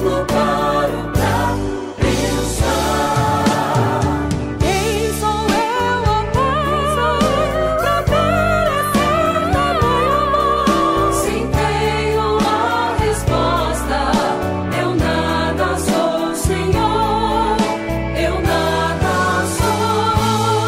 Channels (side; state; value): both; identical; correlation 1.00